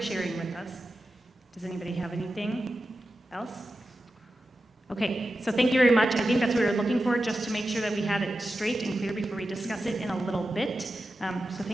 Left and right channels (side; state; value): both; normal; correlation 0.92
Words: sharing with us. Does anybody have anything else? Okay, so thank you very much. I think that's what we were looking for, just to make sure that we had it straight and clear before we discuss it in a little bit. So